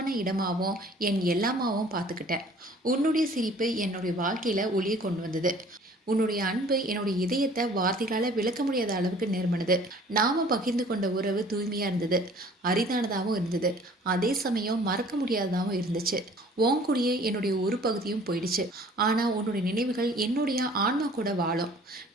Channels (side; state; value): both; normal; correlation 0.52